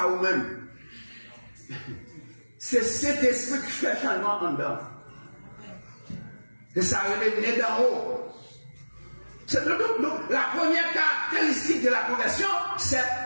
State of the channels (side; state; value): both; inverted; correlation -1.00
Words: vous-même. C'est cet esprit qui fait changement en dedans. Et ça revient d'en haut. Donc, la première caractéristique de la conversion, c'est